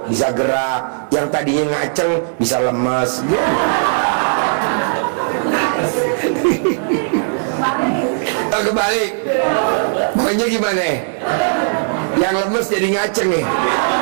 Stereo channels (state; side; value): silent; left; 61 dB below the other